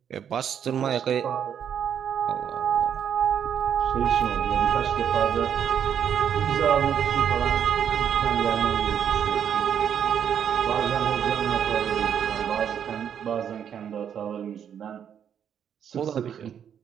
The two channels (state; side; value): quieter; left; 8.6 dB